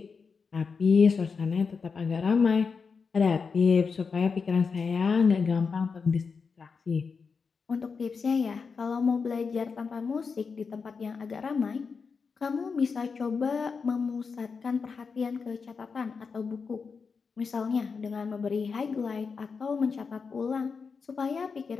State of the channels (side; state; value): right; quieter; 5.3 dB